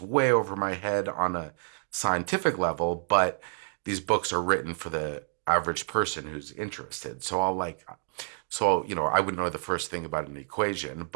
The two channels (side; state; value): left; silent; digital silence